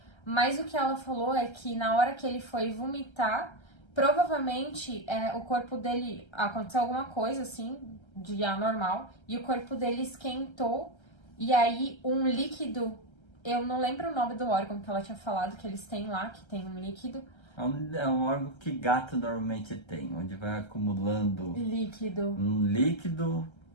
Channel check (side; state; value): right; late; 1.3 ms